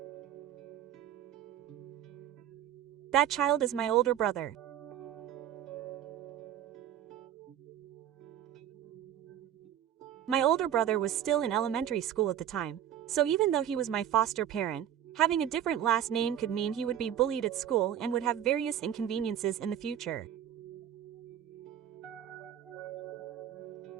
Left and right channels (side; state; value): left; quieter; 10.5 dB